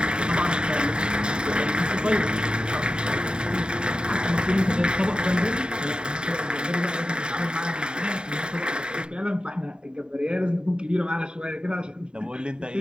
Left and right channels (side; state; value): left; late; 0.049 ms